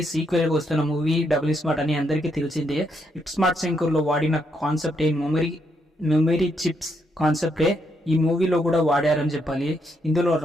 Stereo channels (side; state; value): both; normal; correlation 0.77